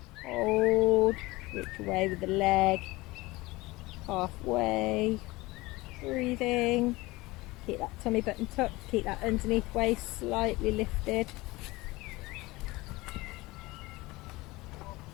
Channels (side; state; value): right; quieter; 21.2 dB